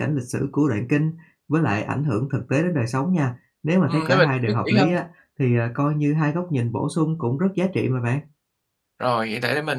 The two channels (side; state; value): both; identical; correlation 1.00